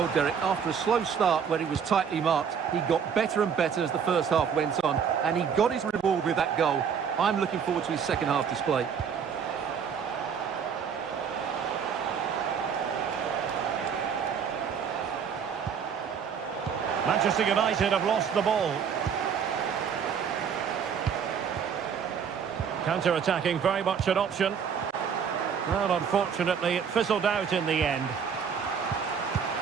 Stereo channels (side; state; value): left; quieter; 7.1 dB